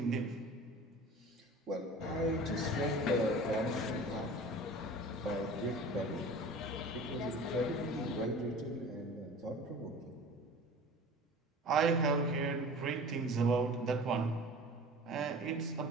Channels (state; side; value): normal; both; correlation 0.40